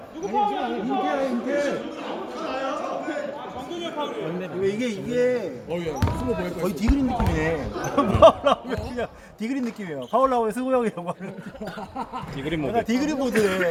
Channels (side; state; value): both; identical; correlation 1.00